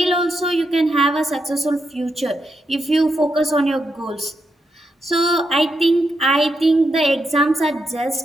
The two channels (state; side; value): normal; both; correlation 0.83